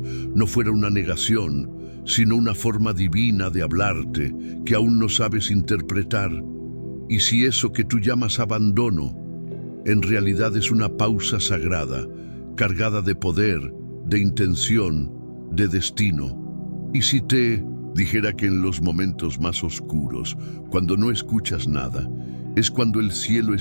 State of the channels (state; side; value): inverted; both; correlation -1.00